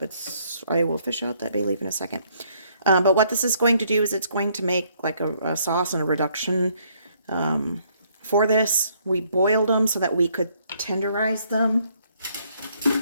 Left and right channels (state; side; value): inverted; both; correlation -0.67